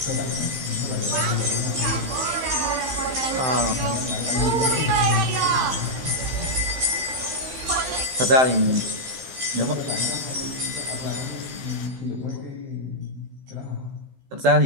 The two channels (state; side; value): late; left; 15 ms